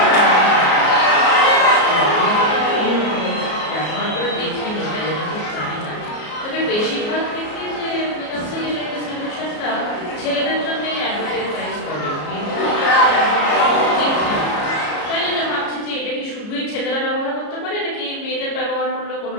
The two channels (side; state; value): right; late; 33 ms